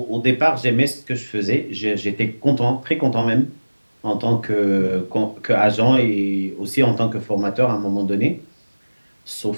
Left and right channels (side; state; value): both; inverted; correlation -1.00